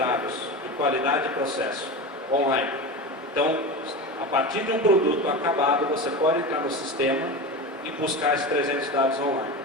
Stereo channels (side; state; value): both; normal; correlation 0.26